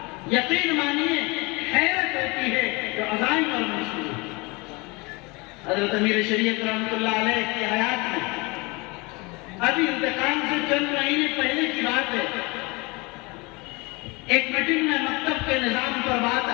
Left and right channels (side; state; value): right; quieter; 26.2 dB